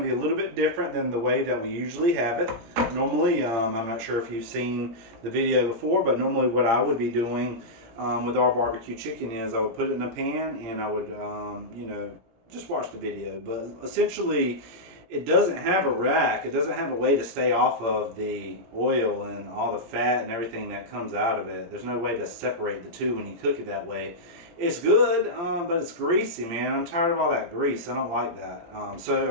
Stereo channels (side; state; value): left; late; 17 ms